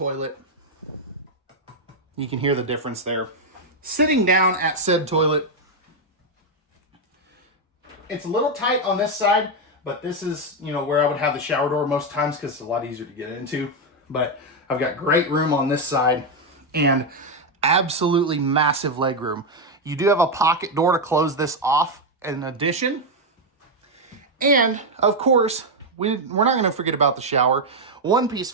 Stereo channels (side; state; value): both; normal; correlation 0.03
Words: You can hear the difference there. Sitting down at said toilet. It's a little tight on this side, but this is, you know, where I would have the shower door most times because it's a lot easier to get into. But I've got great room on this side and absolutely massive leg room. You do have a pocket door to close this off in addition. And of course, we're not going to forget about the shower. One-piece